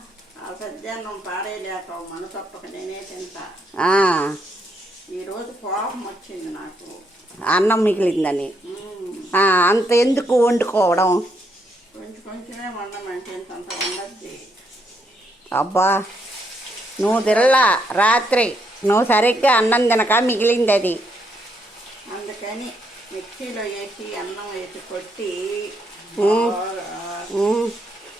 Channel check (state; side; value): normal; both; correlation 0.76